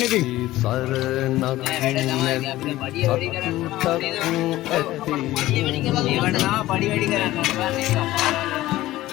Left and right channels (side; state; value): right; quieter; 16.2 dB